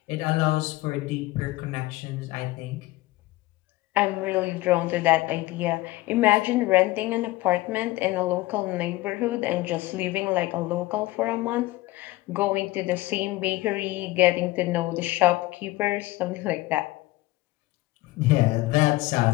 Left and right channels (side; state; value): right; quieter; 18.9 dB